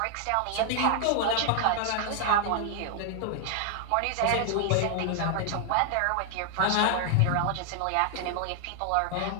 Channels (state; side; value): different; both; correlation 0.00